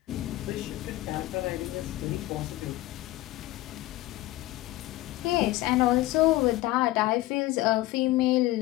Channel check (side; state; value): right; quieter; 17.4 dB